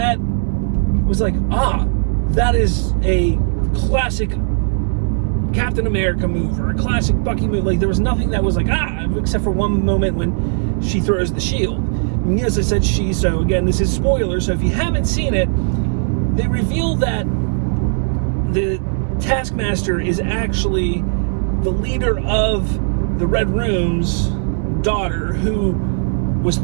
was like, that is a classic Captain America move or a classic Bucky move. Like, there was nothing that was like, except for one moment when she throws the shield. And as I said, so again, this is spoiler, so if you haven't seen it, they reveal that the Taskmaster is actually the leader of the Red Room's daughter, who was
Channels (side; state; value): left; silent; 65 dB below the other